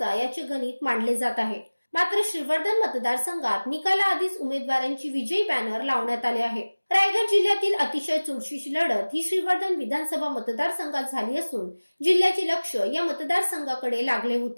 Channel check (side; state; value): both; inverted; correlation -1.00